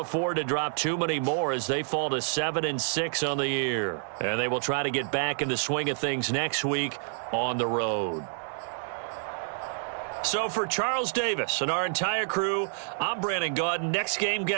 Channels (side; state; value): left; silent; digital silence